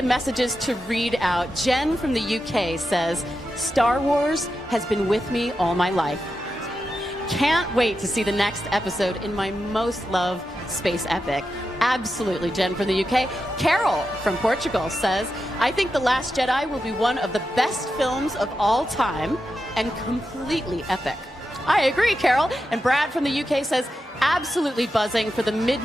messages to read out. Jen from the UK says, Star Wars has been with me all my life. Can't wait to see the next episode in my most loved space epic. Absolutely. Jen from the UK. Carol from Portugal says, I think The Last Jedi will be one of the best films of all time and completely epic. I agree, Carol. And Brad from the UK says, absolutely buzzing for the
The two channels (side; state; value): both; normal; correlation 0.89